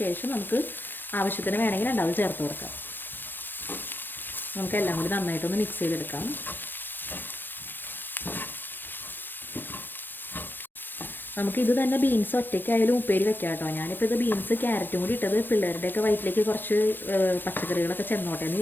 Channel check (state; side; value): late; right; 0.094 ms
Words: ശേഷം നമുക്ക് ആവശ്യത്തിന് വേണമെങ്കിൽ 2 ചേർത്ത് കൊടുക്കാം. നമുക്കെല്ലാം കൂടി നന്നായിട്ടൊന്ന് മിക്സ് ചെയ്തെടുക്കാം. നമുക്കിത് തന്നെ ബീൻസ് ഒറ്റയ്ക്കായാലും ഉപ്പേരി വെക്കാം കേട്ടോ. ഞാനിപ്പോൾ ഇത് ബീൻസ് ക്യാരറ്റും കൂടി ഇട്ടത് പിള്ളേരുടെയൊക്കെ വയറ്റിലേക്ക് കുറച്ച് പച്ചക്കറികളൊക്കെ ചെന്നോട്ടെ എന്ന്